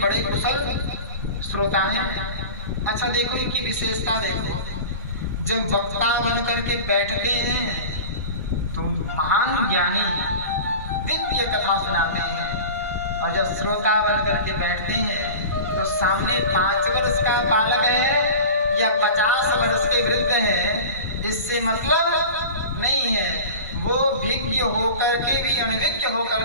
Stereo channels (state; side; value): inverted; both; correlation -0.35